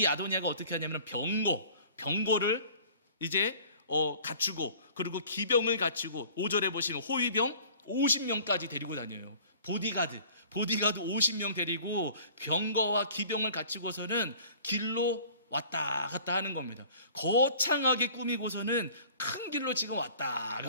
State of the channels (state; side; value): inverted; both; correlation -0.48